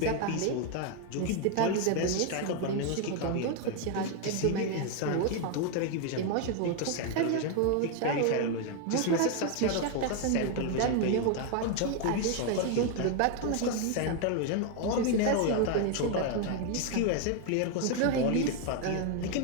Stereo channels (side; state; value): both; different; correlation 0.01